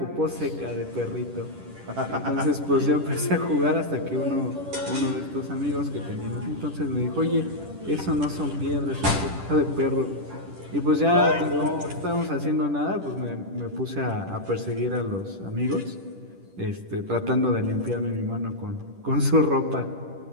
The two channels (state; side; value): late; left; 10 ms